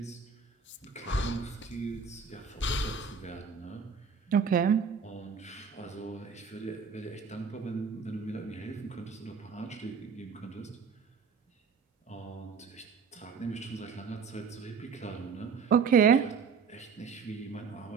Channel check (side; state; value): left; quieter; 5.7 dB